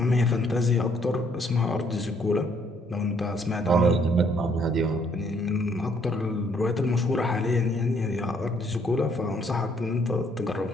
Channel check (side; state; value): both; normal; correlation 0.67